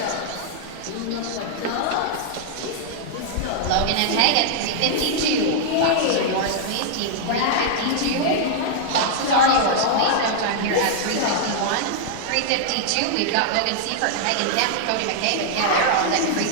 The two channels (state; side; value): different; both; correlation -0.01